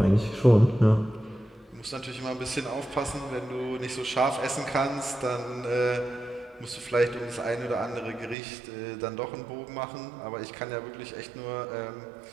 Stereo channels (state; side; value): drops out; left; at 8.3 s